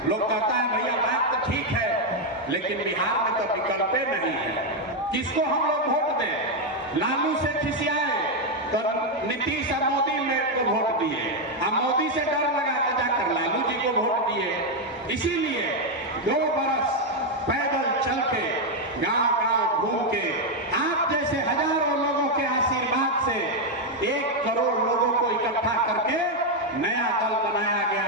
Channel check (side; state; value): both; normal; correlation 0.03